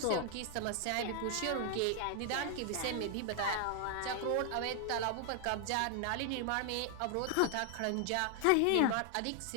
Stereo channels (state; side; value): different; both; correlation 0.00